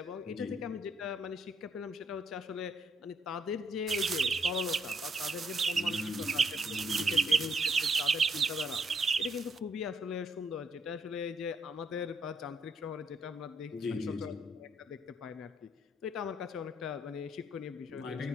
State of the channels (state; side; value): normal; both; correlation 0.72